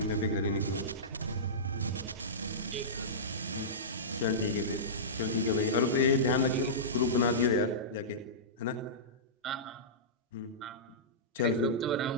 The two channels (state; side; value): normal; both; correlation -0.17